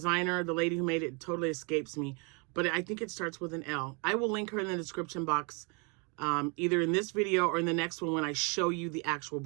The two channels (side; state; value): left; quieter; 33.0 dB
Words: the lady who made it, totally escapes me. But I think it starts with an L. I will link her in the description box, either in this video or in the next one when I show you the actual